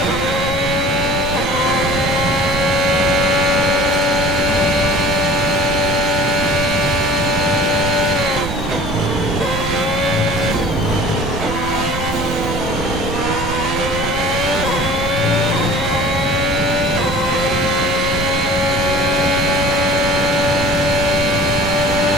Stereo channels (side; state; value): right; noise; rumble, 7 dB below the sound